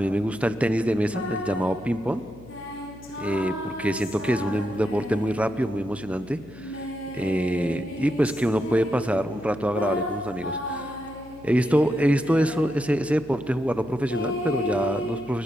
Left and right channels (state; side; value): noise; left; hum, 20 dB below the sound